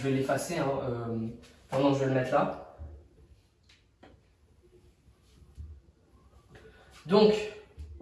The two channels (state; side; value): identical; both; correlation 1.00